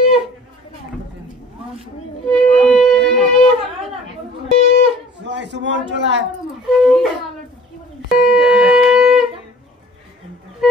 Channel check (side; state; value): both; normal; correlation 0.49